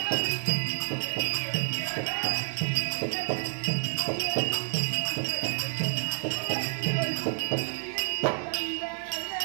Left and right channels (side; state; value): left; silent; 58 dB below the other